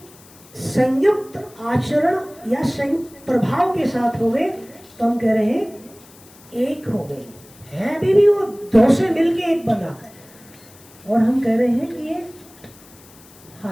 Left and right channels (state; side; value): noise; left; hiss, 24 dB below the sound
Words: संयुक्त आचरण या संयुक्त प्रभाव के साथ हो गए, तो हम कह रहे हैं एक हो गए। है अभी भी वो दो से मिलके एक बना है, और हम कह रहे हैं कि ये